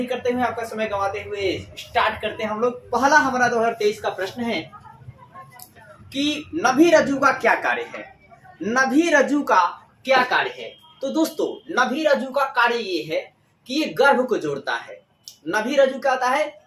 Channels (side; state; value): both; identical; correlation 1.00